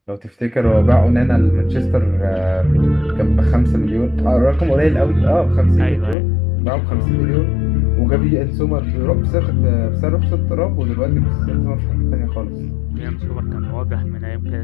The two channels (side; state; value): right; drops out; at 6.2 s